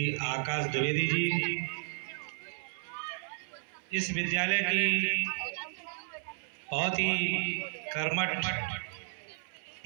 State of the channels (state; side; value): silent; left; 56 dB below the other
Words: आकाश द्विवेदी जी, इस विद्यालय की बहुत ही कर्मठ